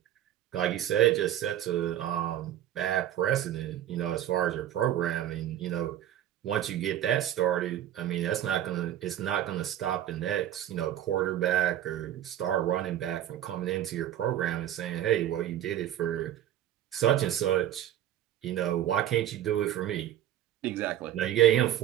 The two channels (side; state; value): left; quieter; 11.9 dB